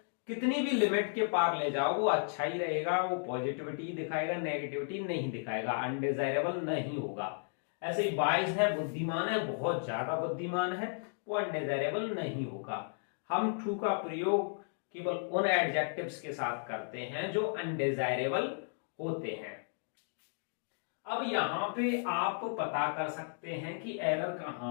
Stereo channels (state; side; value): silent; right; digital silence